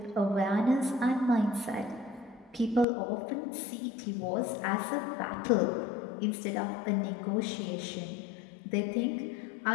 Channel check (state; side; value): drops out; right; at 2.9 s